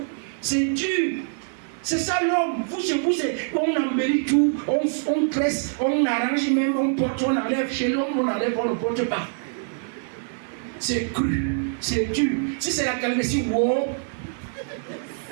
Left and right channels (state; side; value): silent; left; digital silence